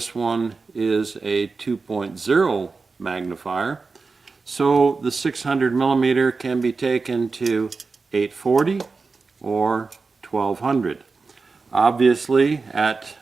one is a 2.0 magnifier. So the 600 millimeter can be taken to 840 or 1200. Obviously, at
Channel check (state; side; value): quieter; left; 4.3 dB